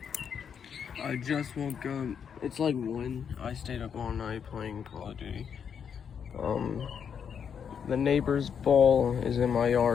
I just woke up. It's like 1. I stayed up all night playing Call of Duty. The neighbor's ball is in my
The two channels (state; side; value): quieter; right; 7.4 dB